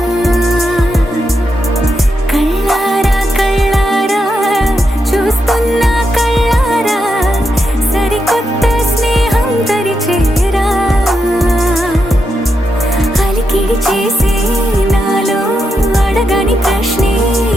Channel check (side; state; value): both; normal; correlation 0.84